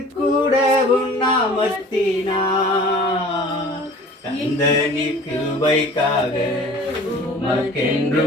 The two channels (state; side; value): normal; both; correlation 0.46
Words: கூட உண்ணாமத்தினா கந்தனி கிருபைக்காக